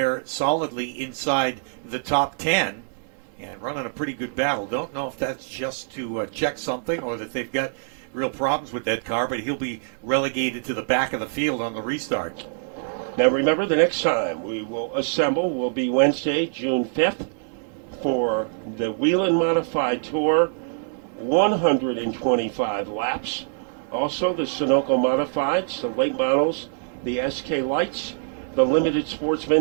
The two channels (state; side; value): silent; left; digital silence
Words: solidly inside the top 10 and running a pretty good battle. Don't know if that's just to check something or that they've got real problems with that car, but he'll be relegated to the back of the field on the restart. Now remember, the next time we will assemble will be Wednesday, June 5th, for the Whelen Modified Tour, 125 laps. Also the Sunoco Modifieds, the late models, the SK Lights, the Limited